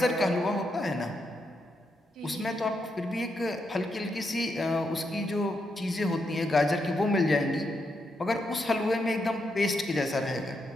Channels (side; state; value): both; normal; correlation 0.82